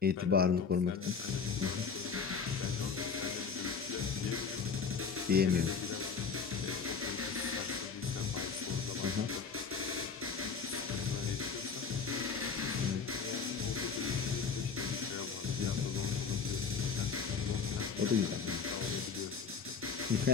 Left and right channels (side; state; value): right; quieter; 5.7 dB